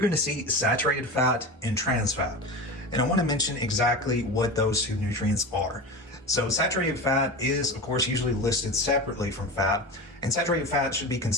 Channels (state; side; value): normal; both; correlation 0.27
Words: to see saturated fat and trans fat. And I want to mention exactly what those 2 nutrients are. So saturated fat is, of course, usually listed separately from fat, and saturated fat should be